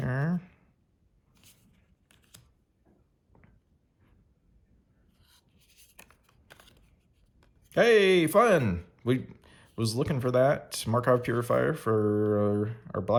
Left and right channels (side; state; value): both; identical; correlation 1.00